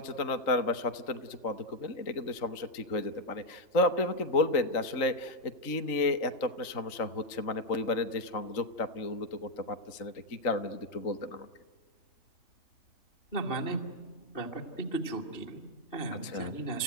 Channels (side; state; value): right; late; 3.8 ms